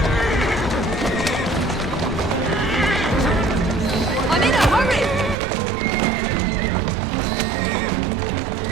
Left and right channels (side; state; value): left; drops out; at 5.4 s